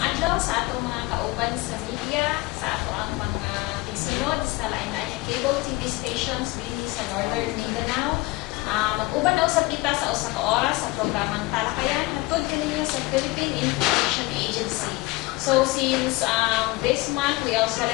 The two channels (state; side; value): quieter; right; 22.1 dB